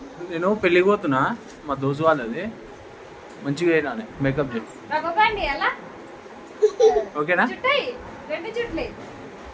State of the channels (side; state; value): both; identical; correlation 1.00